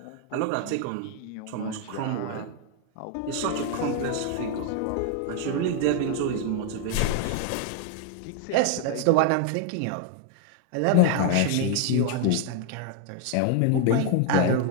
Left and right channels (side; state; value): both; different; correlation 0.00